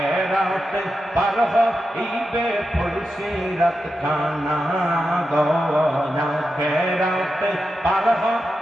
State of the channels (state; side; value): normal; both; correlation 0.89